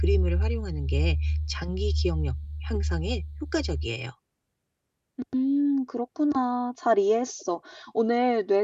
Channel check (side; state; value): both; identical; correlation 1.00